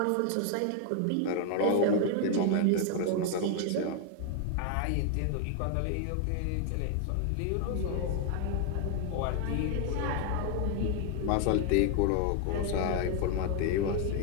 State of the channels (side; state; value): both; different; correlation 0.00